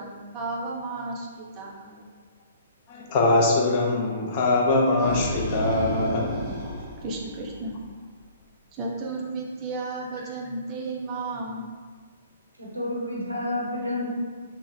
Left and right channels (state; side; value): inverted; both; correlation -0.50